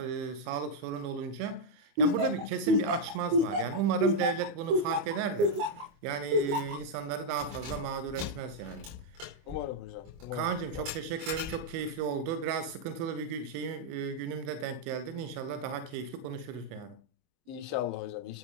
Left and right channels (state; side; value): late; left; 24 ms